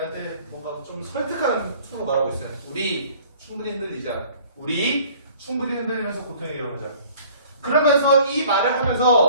뭔가 좀 설득하는 투로 말하고 있어요. 우리 충분히 흔들리자. 우리 충분히 흔들리면서 고통에게로 가자. 그러면서 이 말을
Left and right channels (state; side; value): inverted; both; correlation -0.52